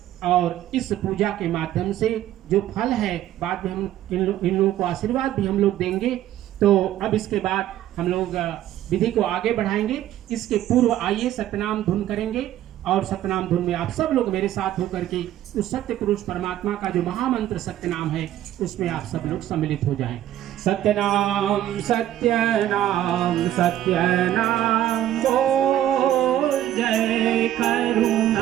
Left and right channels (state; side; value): quieter; left; 12.6 dB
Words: और इस पूजा के माध्यम से जो फल है, बाद में हम इन लोगों को आशीर्वाद भी हम लोग देंगे। तो अब इसके बाद हम लोग विधि को आगे बढ़ाएंगे। इसके पूर्व आइए सतनाम धुन करेंगे। और सतनाम धुन में आप सब लोग मेरे साथ होकर के उस सत्य पुरुष परमात्मा का जो महामंत्र सत्य नाम है उसमें आप सब लोग सम्मिलित हो जाएं। सत्यनाम सत्यनाम सत्यनाम बोल, जय